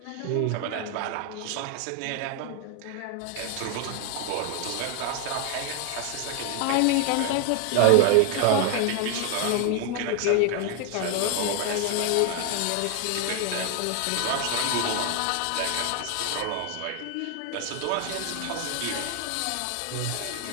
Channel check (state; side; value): different; both; correlation 0.01